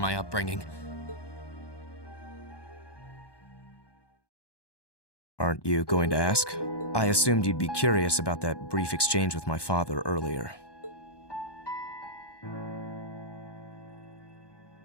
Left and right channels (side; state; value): right; late; 1.2 ms